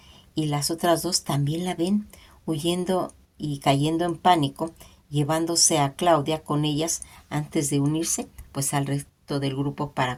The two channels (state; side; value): identical; both; correlation 1.00